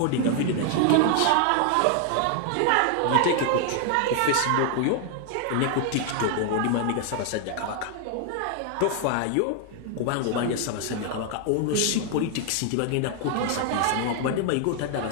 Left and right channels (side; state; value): both; different; correlation 0.00